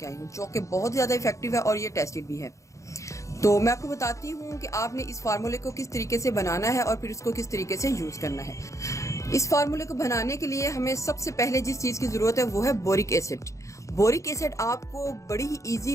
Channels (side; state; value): right; late; 0.15 ms